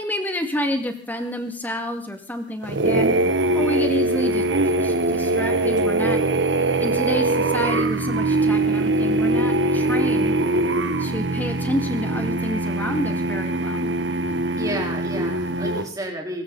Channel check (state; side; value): normal; both; correlation 0.23